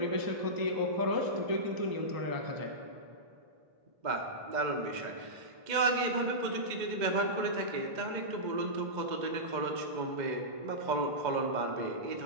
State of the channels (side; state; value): left; late; 2.0 ms